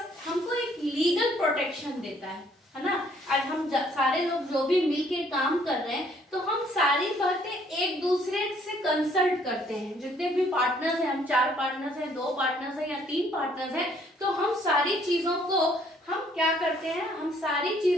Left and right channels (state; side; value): normal; both; correlation 0.63